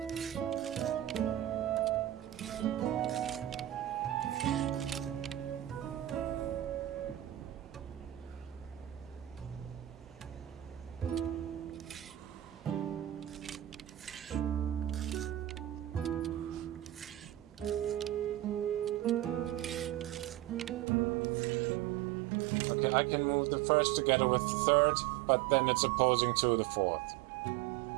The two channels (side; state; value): left; drops out; at 20.9 s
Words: Okay, I can move the first together with the third, but then it's opposing to the fourth.